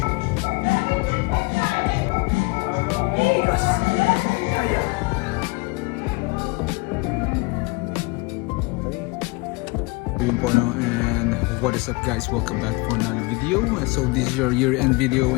Yun po no, and what is up guys, welcome back for another video. So this is your year-end video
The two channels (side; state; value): right; quieter; 26.2 dB